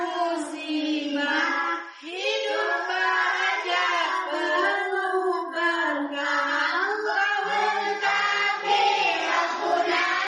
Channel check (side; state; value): both; identical; correlation 1.00